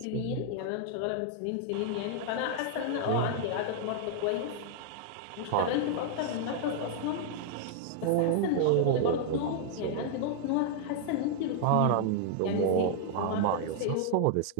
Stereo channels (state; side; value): different; both; correlation 0.00